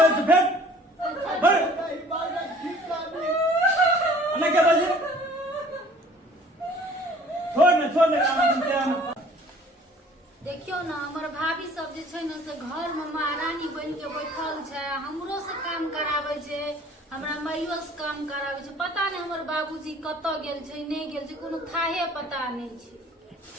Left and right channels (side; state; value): both; normal; correlation 0.52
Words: फिर अन्ना क्या बात है छोड़ ना देखियो ना हमर भाभी सब जे छै ना से घर में महारानी बन के बैठल छै हमरो से काम करावे छै हमरा माइयो से काम करावे छै पता नहीं हमर बाबूजी कत गेल छै नहीं गेल छै कोनो थाहे पता नहीं छै